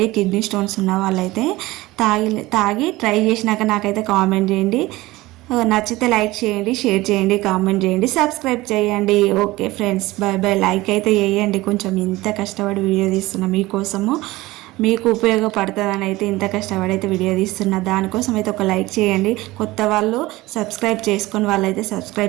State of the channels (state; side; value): quieter; left; 19.2 dB